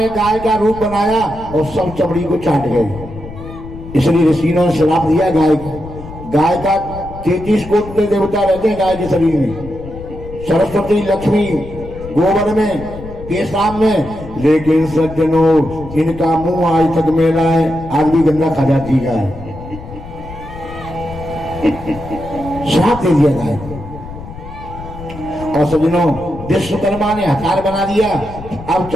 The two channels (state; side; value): noise; left; rumble, 13 dB below the sound